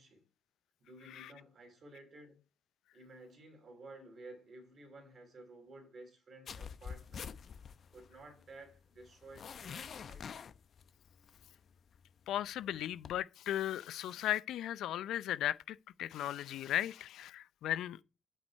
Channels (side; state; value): right; quieter; 10.6 dB